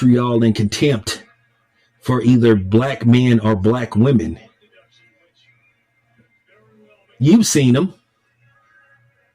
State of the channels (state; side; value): identical; both; correlation 1.00